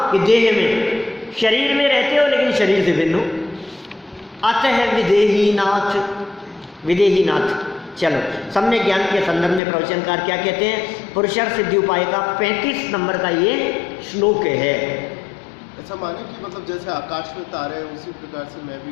कि देह में, शरीर में रहते हो लेकिन शरीर से भिन्न हो। अतः विदेही नाथ, विदेही नाथ। चलो, सम्यक ज्ञान के संदर्भ में प्रवचनकार क्या कहते हैं? पुरुषार्थ सिद्धि उपाय का 35 नंबर का ये श्लोक है। ऐसा माने कि मतलब जैसे आकाश में तारे हैं उसी प्रकार से मैं भी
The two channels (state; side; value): drops out; right; at 9.6 s